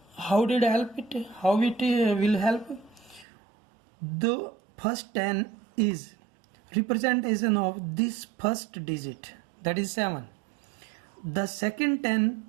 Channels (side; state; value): left; drops out; at 3.2 s